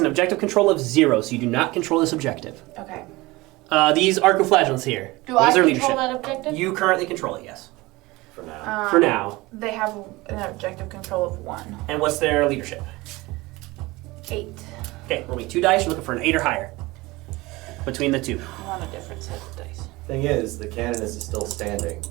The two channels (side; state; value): left; quieter; 21.3 dB